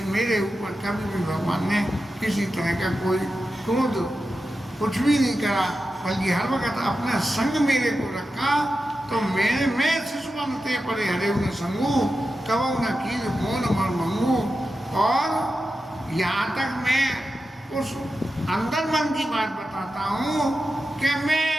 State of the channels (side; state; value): both; normal; correlation 0.91